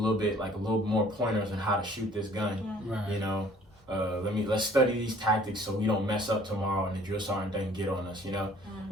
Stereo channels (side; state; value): both; normal; correlation 0.55